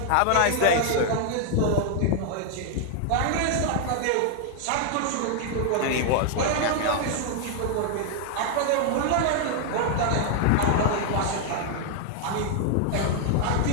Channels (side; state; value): both; different; correlation 0.00